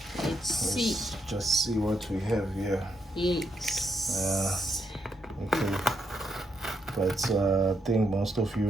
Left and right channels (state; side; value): normal; both; correlation 0.79